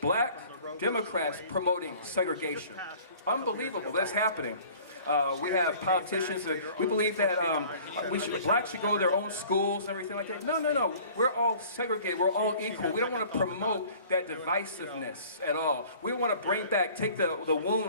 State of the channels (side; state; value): both; inverted; correlation -0.49